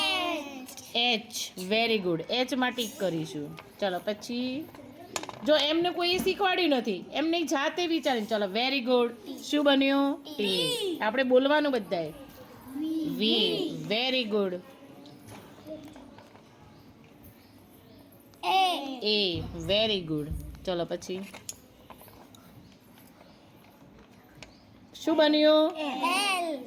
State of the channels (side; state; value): both; identical; correlation 1.00